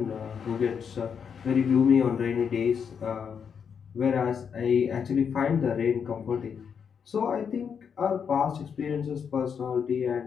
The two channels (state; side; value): quieter; right; 6.9 dB